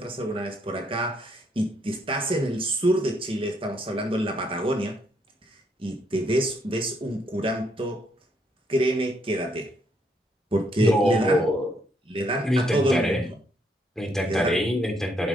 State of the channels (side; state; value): both; normal; correlation 0.72